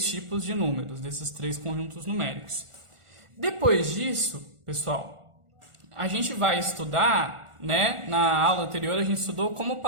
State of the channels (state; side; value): late; left; 1.4 ms